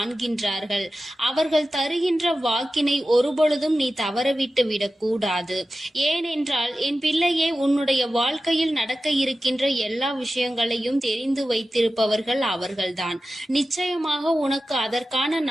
அவர்கள் தருகின்ற வாக்கினை ஒருபொழுதும் நீ தவறவிட்டு விடக்கூடாது. ஏனென்றால் என் பிள்ளையே, உன்னுடைய வாழ்க்கையில் நடக்க இருக்கின்ற எல்லா விஷயங்களையும் தெரிந்து வைத்திருப்பவர்கள் அவர்கள்தான். நிச்சயமாக உனக்கு அதற்கான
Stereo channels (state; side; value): normal; both; correlation 0.94